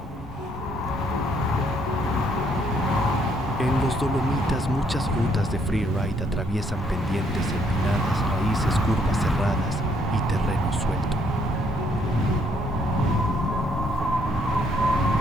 En los Dolomitas muchas rutas de freeride atraviesan pendientes empinadas, raíces, curvas cerradas y terreno suelto.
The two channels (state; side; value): normal; both; correlation 0.69